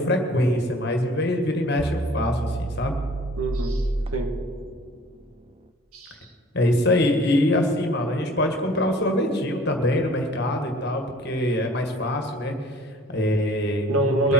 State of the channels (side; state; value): both; normal; correlation 0.51